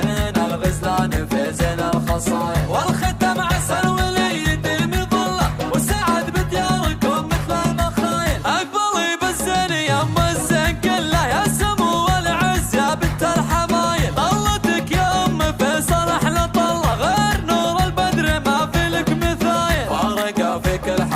الغزلان في زين الخصايل، والختم عسل ولي يديم ظله، والسعد بدياركم مثل المخايل، اقبلي بالزين يا ام الزين كله، يا سمو والعز يا بنت الحمايل، طلتك يا ام فيصل احلى طله، غير نور البدر ما في لك مثايل، فارقه في كل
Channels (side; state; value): both; identical; correlation 1.00